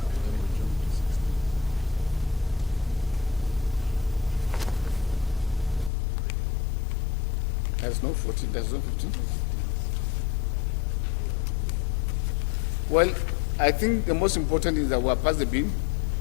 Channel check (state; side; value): drops out; right; at 5.9 s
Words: there's no 14, there's no 15. Well, I think the most important is that we are past the bill,